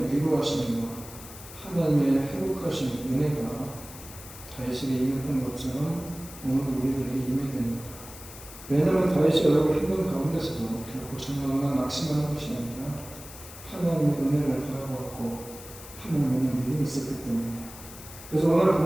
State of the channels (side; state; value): left; noise; hiss, 15 dB below the sound